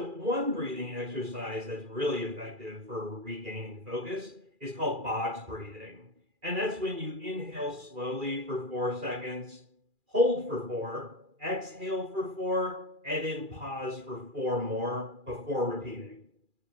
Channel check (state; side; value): late; left; 2.4 ms